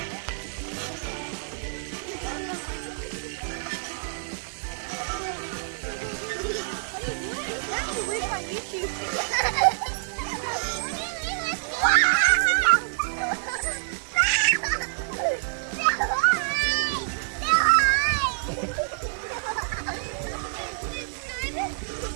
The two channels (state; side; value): silent; left; digital silence